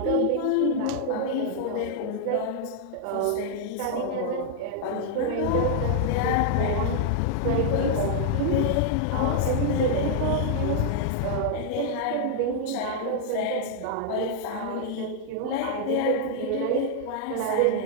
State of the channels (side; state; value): both; different; correlation -0.01